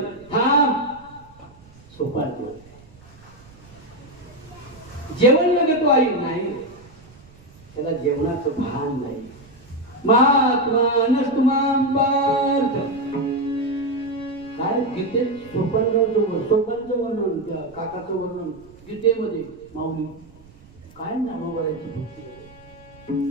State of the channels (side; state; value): right; noise; rumble, 24 dB below the sound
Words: थांब. सोपान जेवण लागतो आई नाही. त्याला जेवणाचं भान नाही. महात्मा नसतुमाम पार्थ काय गीतेत सोपानचं वर्णन त्या काकाचं वर्णन गीतेमध्ये माऊली काय नाम करायची भक्ती.